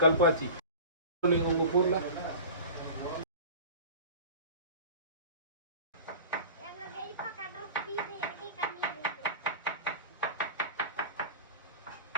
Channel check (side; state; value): both; inverted; correlation -0.37